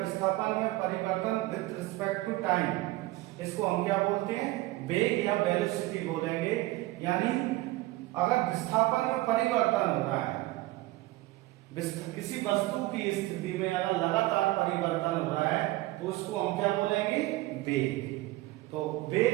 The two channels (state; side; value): quieter; left; 18.7 dB